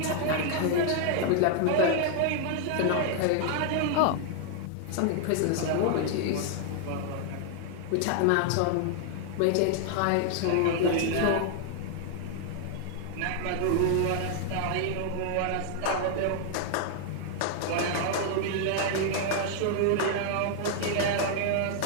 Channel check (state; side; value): different; both; correlation 0.00